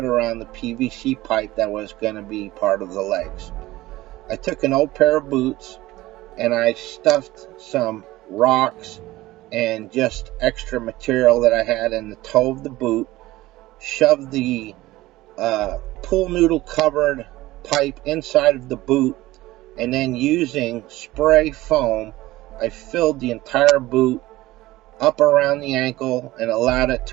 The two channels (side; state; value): left; quieter; 17.6 dB